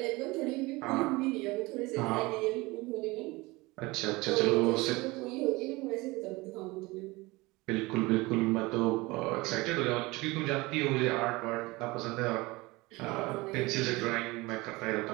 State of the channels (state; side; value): quieter; left; 22.6 dB